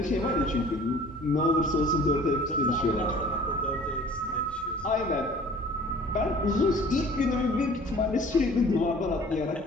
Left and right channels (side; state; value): both; normal; correlation 0.49